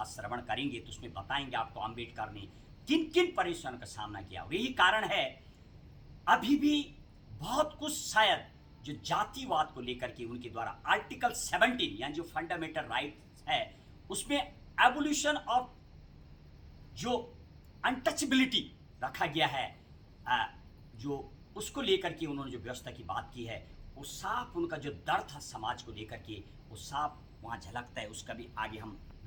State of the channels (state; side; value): identical; both; correlation 1.00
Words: श्रवण करेंगे तो उसमें बताएंगे आपको अंबेडकर ने किन किन परेशानियों का सामना किया। और यही कारण है अभी भी बहुत कुछ शायद जो जातिवाद को लेकर के उनके द्वारा आर्टिकल 17 यानी जो फंडामेंटल राइट्स है उसमें एवोल्यूशन ऑफ जो अनटचेबिलिटी रखा गया है, जो उसको लेकर के उन्होंने जो व्यवस्था की बात की है, वो साफ उनका जो डर था समाज को लेकर के वो साफ वहाँ झलकता है। उसका भी आगे हम